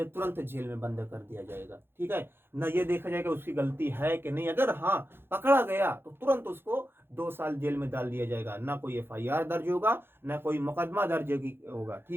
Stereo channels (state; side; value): late; left; 0.11 ms